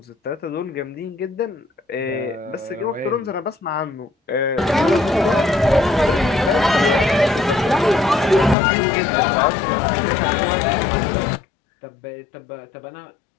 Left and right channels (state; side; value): drops out; right; at 8.6 s